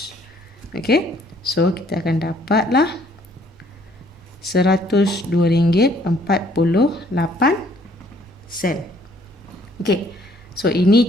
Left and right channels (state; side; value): normal; both; correlation 0.62